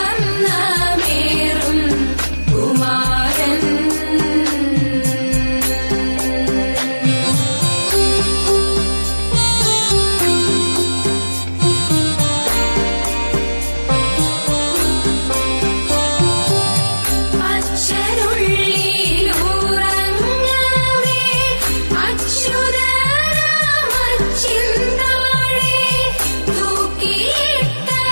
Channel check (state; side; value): inverted; both; correlation -1.00